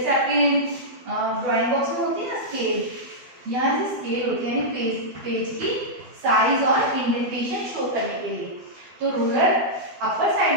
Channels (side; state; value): left; late; 12 ms